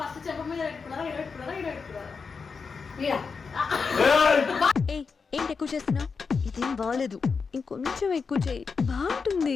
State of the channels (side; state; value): right; quieter; 5.2 dB